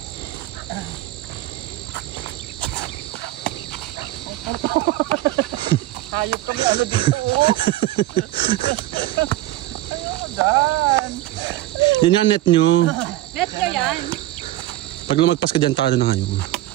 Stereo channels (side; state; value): left; quieter; 16.0 dB